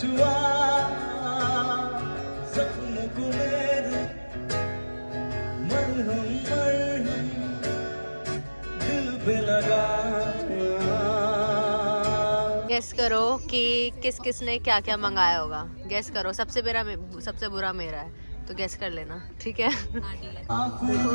सपनों को मेरे, मरहम मरहम दिल पे लगा। गेस करो कि किस किस ने क्या क्या मंगाया होगा। गेस करो, सबसे बुरा मेरा है, तो गेस कर लेना, ठीक है? देखो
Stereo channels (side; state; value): both; inverted; correlation -1.00